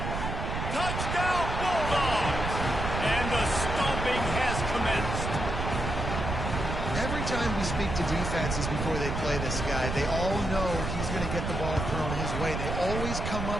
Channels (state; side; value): noise; right; rumble, 3 dB below the sound